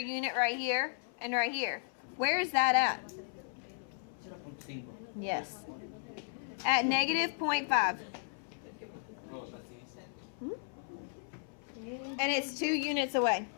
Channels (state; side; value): silent; right; 54 dB below the other